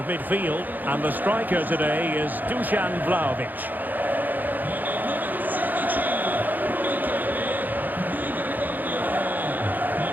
midfield. And the striker today is Dusan Vlahovic.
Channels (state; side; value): late; left; 0.085 ms